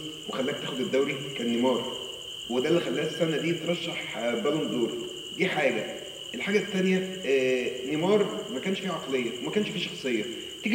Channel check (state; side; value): identical; both; correlation 1.00